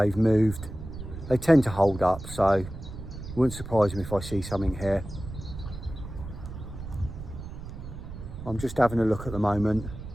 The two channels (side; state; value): right; noise; rumble, 11 dB below the sound